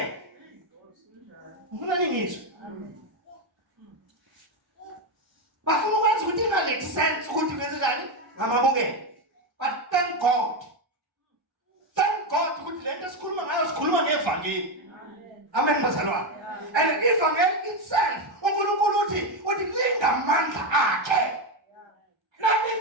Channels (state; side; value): late; left; 1.3 ms